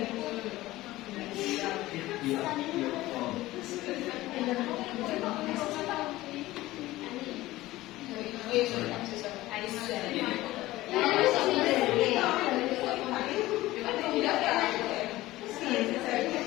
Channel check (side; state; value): right; quieter; 17.3 dB